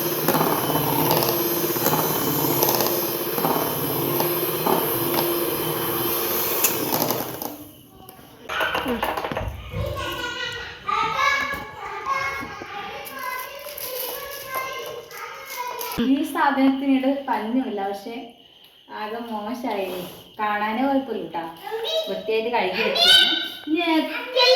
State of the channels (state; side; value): identical; both; correlation 1.00